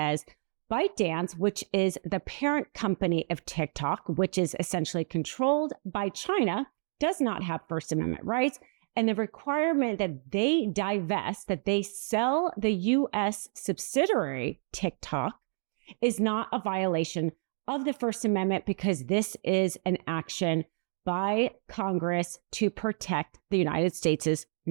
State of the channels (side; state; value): left; silent; digital silence